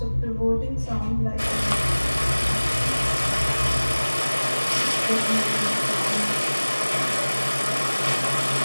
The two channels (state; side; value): inverted; both; correlation -1.00